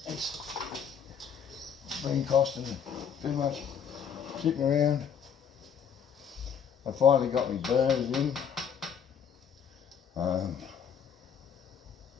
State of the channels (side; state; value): right; quieter; 7.5 dB